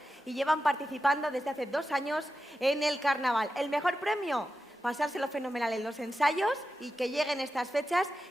y llevan participando desde hace 2 años en el carnaval. El mejor premio, pasárselo fenomenal en los ensayos y que lleguen estas fechas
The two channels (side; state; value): both; normal; correlation 0.91